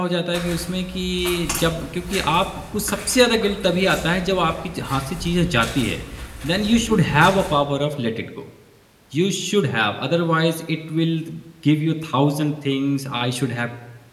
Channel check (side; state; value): both; identical; correlation 1.00